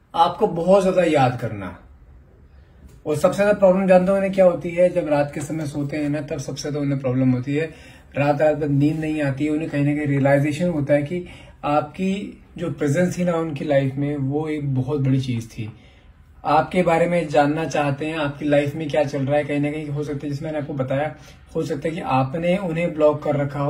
आपको बहुत ज्यादा याद करना। और सबसे ज्यादा प्रॉब्लम जानते हो उन्हें क्या होती है, जब रात के समय सोते हैं ना, तब सबसे ज्यादा उन्हें प्रॉब्लम होती है। रात भर नींद नहीं आती है, उन्हें कहीं ना कहीं रियलाइजेशन होता है कि आपकी जो प्रेजेंस थी ना उनकी लाइफ में, वो एक बहुत बड़ी चीज थी। आपके बारे में जानना चाहते हैं, आपकी लाइफ में क्या चल रहा है। कहीं ना कहीं हो सकता है, जिसमें मैंने आपको बताया, हो सकता है कि आपने उन्हें ब्लॉक कर रखा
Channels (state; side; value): identical; both; correlation 1.00